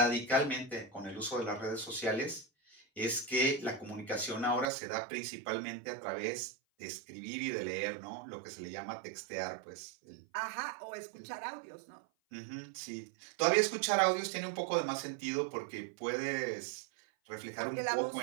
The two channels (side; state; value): left; drops out; at 4.7 s